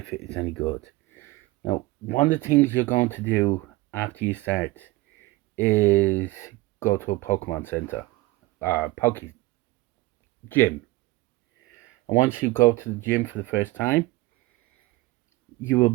it is any good. Now, one of the things you're going to do after you start is go to a Pokemon Center, Poke Gym. And once you go to the gym for the first time, you will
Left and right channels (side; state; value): left; quieter; 20.1 dB